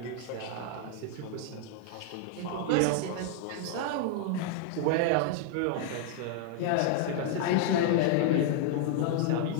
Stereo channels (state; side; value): different; both; correlation 0.00